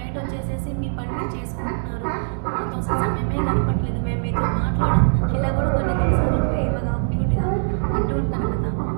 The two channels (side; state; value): left; silent; digital silence